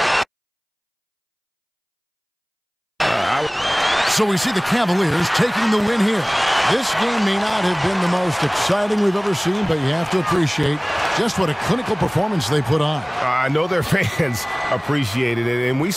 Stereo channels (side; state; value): both; identical; correlation 1.00